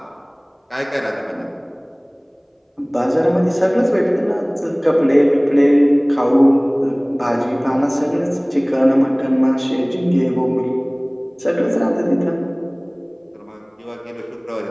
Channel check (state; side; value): identical; both; correlation 1.00